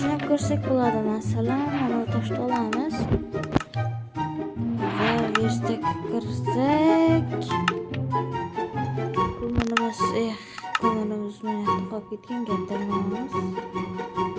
ko'rsak bo'ladi. Masalan, mana toshni olamiz. Va verstga kirsak. Ko'mirimiz mana qolib ketgan gaplarimiz.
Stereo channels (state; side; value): identical; both; correlation 1.00